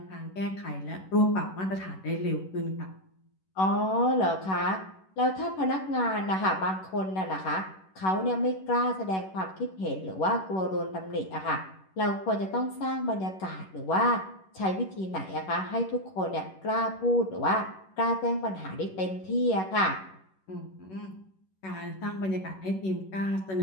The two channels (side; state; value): right; late; 11 ms